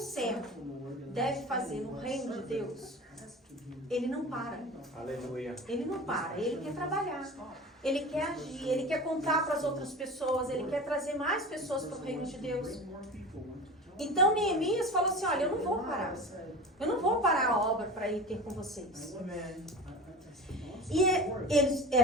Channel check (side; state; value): both; normal; correlation 0.33